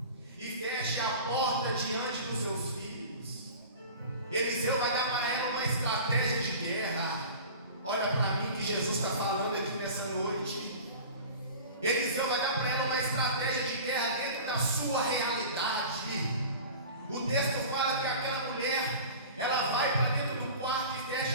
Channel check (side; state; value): both; inverted; correlation -0.37